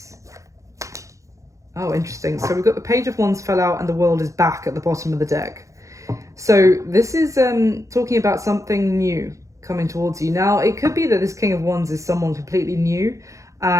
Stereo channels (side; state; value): left; late; 0.15 ms